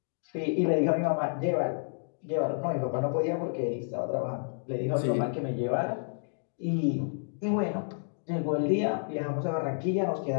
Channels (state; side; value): silent; right; digital silence